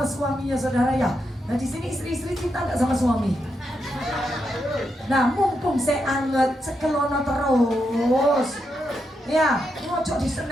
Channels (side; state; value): both; normal; correlation 0.83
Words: suaminya saudara ya. Nah di sini istri-istri cinta nggak sama suami? Nah mumpung saya anget sekelono terus, ya ngocok